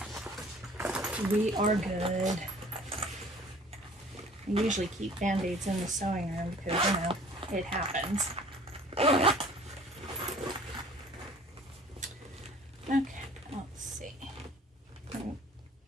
We are good. I usually keep Band-Aids in the sewing room because, you know, it happens. Okay, let's see.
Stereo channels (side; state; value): both; normal; correlation 0.50